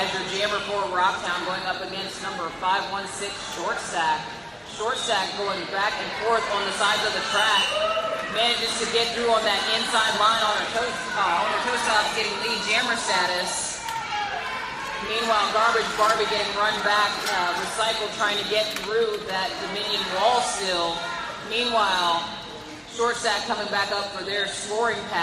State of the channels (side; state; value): both; identical; correlation 1.00